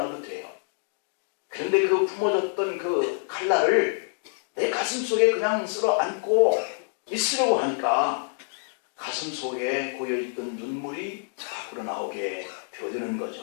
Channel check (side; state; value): right; silent; digital silence